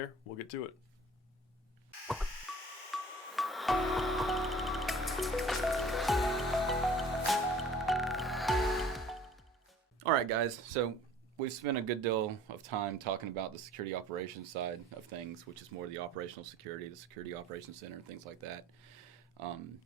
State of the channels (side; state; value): both; normal; correlation 0.49